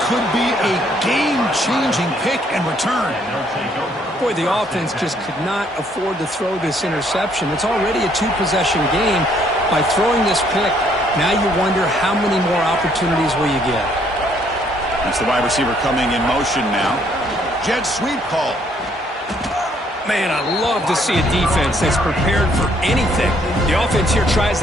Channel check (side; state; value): both; normal; correlation 0.67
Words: could be a game-changing pick and return. Boy, the offense just could not afford to throw this interception. It's already a 2-possession game. By throwing this pick, now you wonder how many more opportunities will you get. That's the wide receiver coming in motion now. Jet sweep call. Man, I love to see a defense that's prepared for anything. The offense here